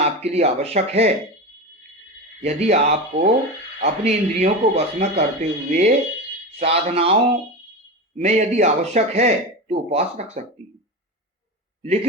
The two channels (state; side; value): normal; both; correlation 0.23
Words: लिए आवश्यक है, यदि आपको अपनी इंद्रियों को वश में करते हुए साधनाओं में यदि आवश्यक है तो उपवास रख सकती है,